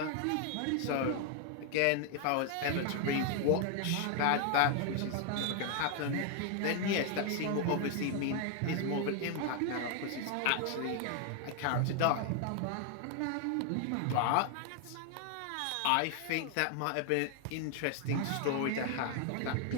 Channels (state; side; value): different; both; correlation 0.00